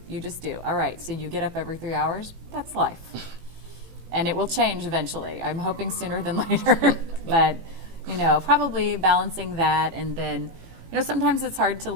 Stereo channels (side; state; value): left; late; 18 ms